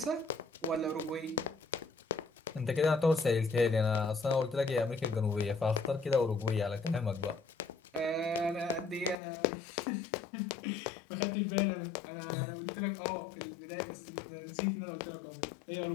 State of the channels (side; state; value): right; drops out; at 9.2 s